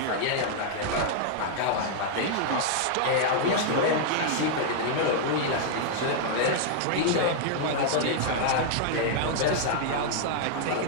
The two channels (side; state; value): both; different; correlation -0.01